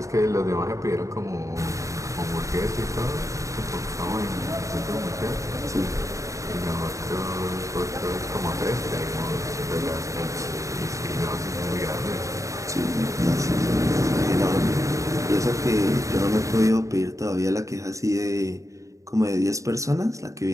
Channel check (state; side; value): late; left; 0.15 ms